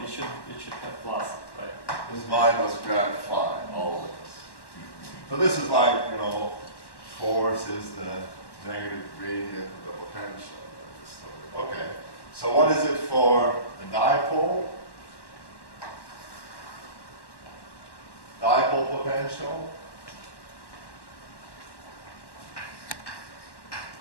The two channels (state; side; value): late; right; 1.1 ms